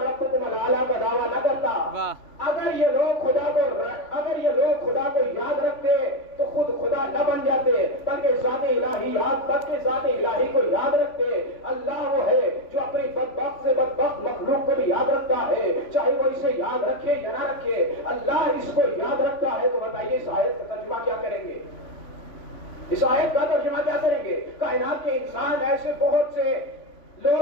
الاعلی کا دعویٰ نہ کرتا۔ اگر یہ لوگ خدا کو یاد رکھتے تو خود خدا نہ بن جاتے، بلکہ ذات الہی کو یاد رکھتے۔ اللہ وہ ہے جو اپنی بدبخت سے بدبخت مخلوق کو بھی یاد رکھتا ہے، چاہے وہ اسے یاد رکھے یا نہ رکھے، اللہ اس کو یاد رکھتا ہے۔ تو بتائیے اس آیت کا ترجمہ کیا کریں گے؟ اس آیت کا ترجمہ کیا کریں گے؟ کائنات کے انسان ایسے بہت سے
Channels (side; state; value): right; late; 3.5 ms